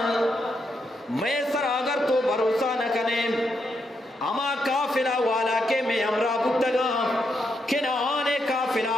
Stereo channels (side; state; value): both; normal; correlation 0.80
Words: میں سر اگر تو بھروسہ نہ کنے اما کافلہ والا کے میں امرا بتگا کہ نہ آنے کافلہ